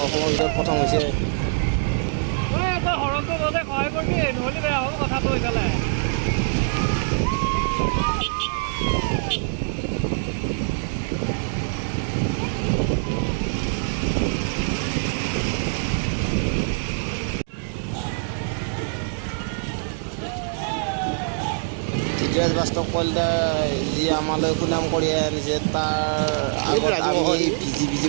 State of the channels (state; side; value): silent; left; digital silence